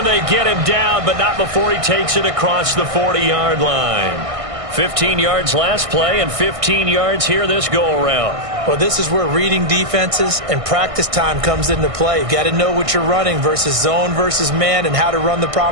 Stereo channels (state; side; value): late; left; 1.6 ms